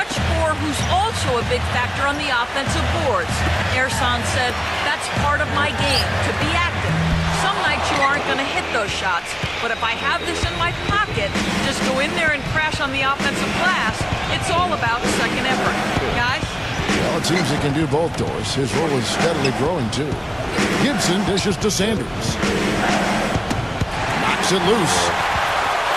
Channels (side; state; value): both; identical; correlation 1.00